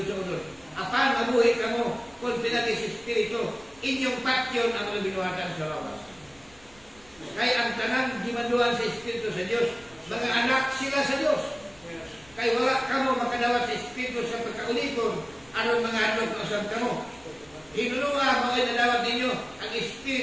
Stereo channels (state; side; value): noise; right; rumble, 28 dB below the sound